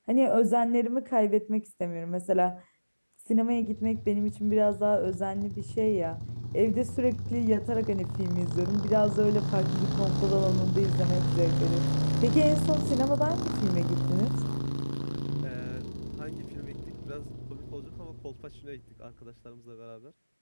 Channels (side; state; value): both; inverted; correlation -1.00